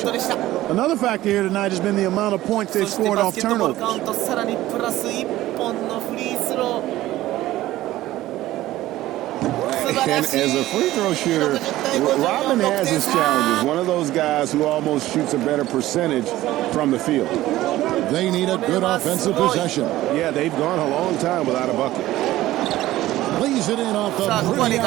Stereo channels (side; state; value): left; quieter; 15.7 dB